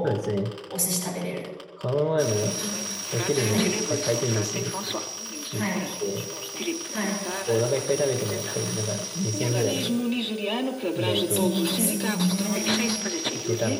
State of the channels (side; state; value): both; identical; correlation 1.00